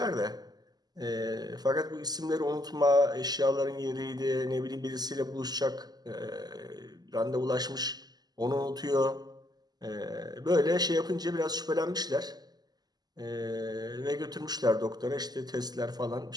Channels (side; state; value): left; late; 0.20 ms